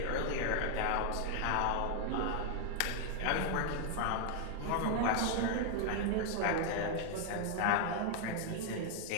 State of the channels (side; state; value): both; different; correlation 0.00